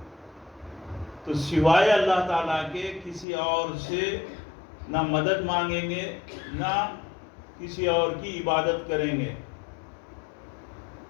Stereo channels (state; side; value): drops out; right; at 3.2 s